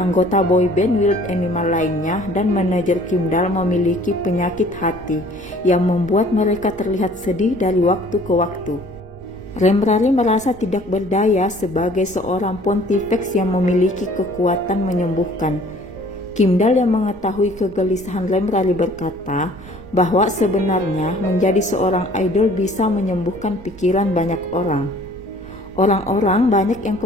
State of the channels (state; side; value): noise; right; rumble, 20 dB below the sound